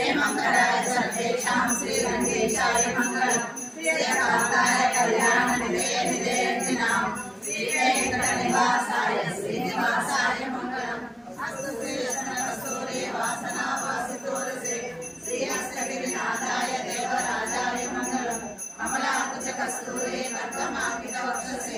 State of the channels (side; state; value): both; identical; correlation 1.00